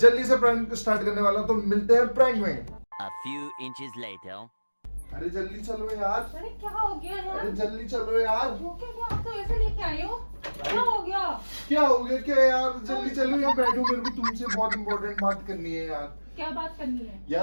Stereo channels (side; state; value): both; inverted; correlation -1.00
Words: से प्रैंक स्टार्ट करने वाला हूं, तो मिलते हैं प्रैंक में। A few inches later. अरे जल्दी चलो यार। अरे क्या हो गया यार? अरे जल्दी चलो यार। वो क्या आप तो ऐसे लेके आए हो? क्या हो गया? क्या हो गया क्या यार? जल्दी चलो, यहाँ बैठो, मेरे को तुमसे बहुत इंपॉर्टेंट बात करनी है यार। क्या बात करनी है?